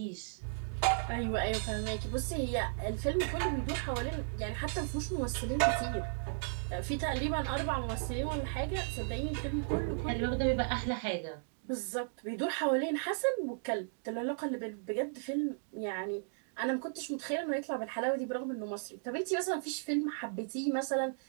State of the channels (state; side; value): silent; left; digital silence